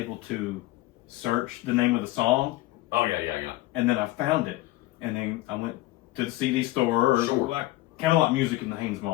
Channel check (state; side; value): quieter; right; 17.8 dB